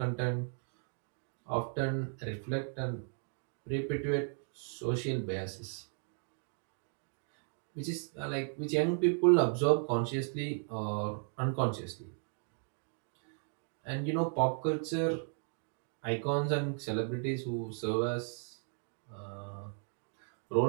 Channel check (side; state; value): left; silent; 54 dB below the other